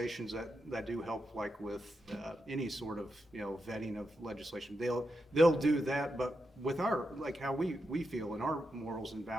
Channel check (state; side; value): normal; both; correlation 0.86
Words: that do help, like with any sort of, vetting of legislation, they'll do that, but with our, like how we feel and our morals and